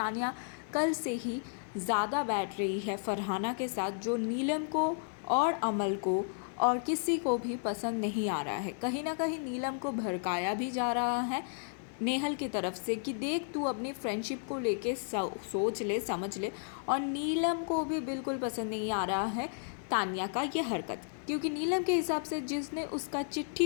कल से ही ज़्यादा बैठ रही है फरहाना के साथ, जो नीलम को और अमल को और किसी को भी पसंद नहीं आ रहा है। कहीं ना कहीं नीलम को भड़काया भी जा रहा है नेहल की तरफ से कि देख तू अपनी फ्रेंडशिप को लेके सोच ले, समझ ले। और नीलम को भी बिल्कुल पसंद नहीं आ रहा है तानिया का ये हरकत, क्योंकि नीलम के हिसाब से जिसने उसका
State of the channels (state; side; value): silent; right; 56 dB below the other